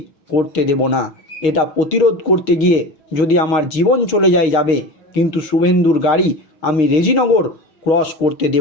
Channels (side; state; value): right; late; 6.4 ms